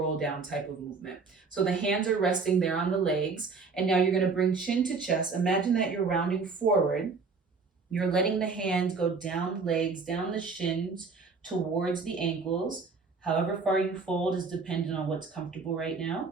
down type of movement. So the hands are resting there on the legs. And now you're gonna bring chin to chest. Imagine that you're rounding forward. You're letting the hands go down the legs, down the shins, towards the ankles. However far you fold is dependent on what's comfortable right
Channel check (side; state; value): left; quieter; 4.6 dB